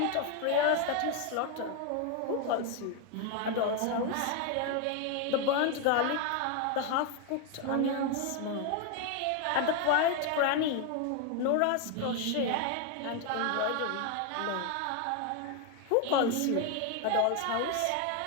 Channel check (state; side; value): different; both; correlation 0.01